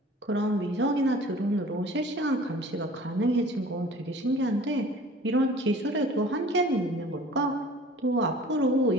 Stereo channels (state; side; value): normal; both; correlation 0.47